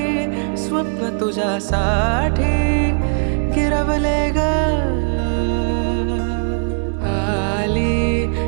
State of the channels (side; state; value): left; silent; digital silence